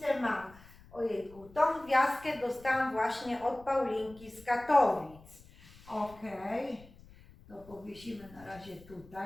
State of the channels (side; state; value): left; noise; rumble, 22 dB below the sound